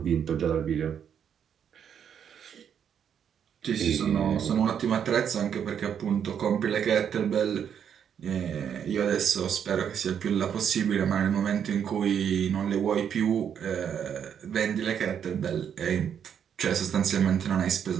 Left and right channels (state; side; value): quieter; left; 8.3 dB